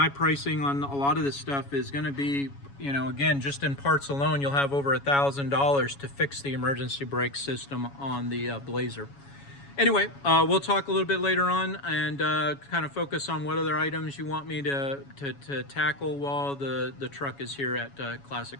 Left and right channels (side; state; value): right; late; 7.2 ms